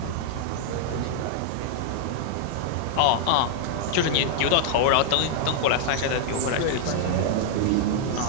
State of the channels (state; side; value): different; both; correlation -0.01